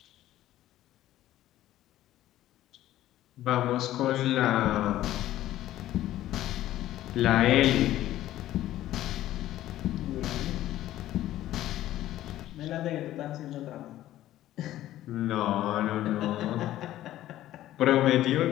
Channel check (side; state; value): right; quieter; 13.9 dB